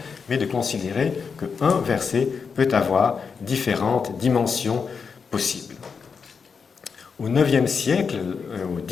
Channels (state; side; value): quieter; right; 5.7 dB